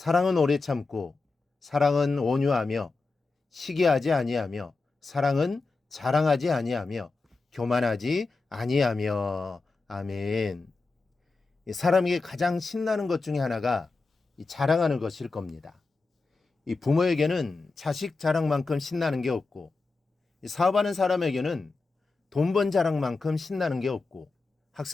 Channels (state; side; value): quieter; right; 3.9 dB